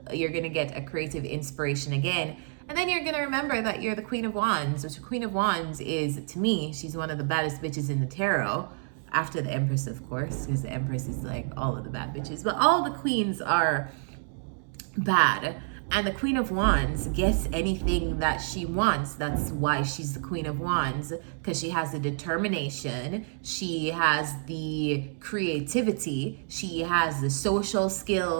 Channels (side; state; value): left; silent; 57 dB below the other